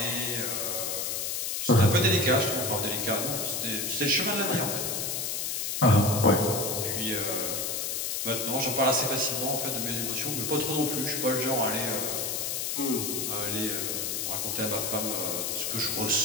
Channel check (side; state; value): left; noise; hiss, 1 dB below the sound